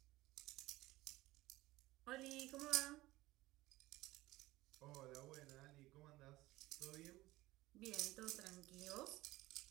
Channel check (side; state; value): left; quieter; 18.2 dB